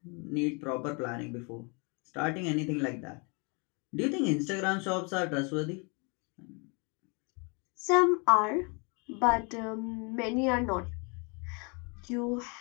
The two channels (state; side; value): quieter; right; 33.1 dB